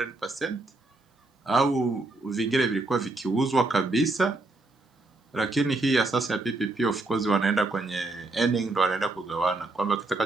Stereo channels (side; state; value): left; quieter; 3.1 dB